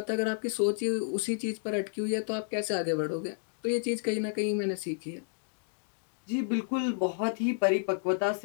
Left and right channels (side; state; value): right; silent; digital silence